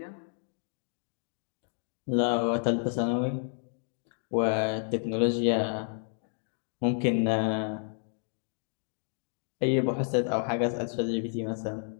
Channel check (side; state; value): right; silent; 57 dB below the other